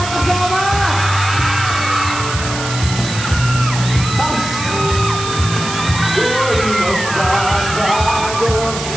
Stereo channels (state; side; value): noise; right; hiss, 8 dB below the sound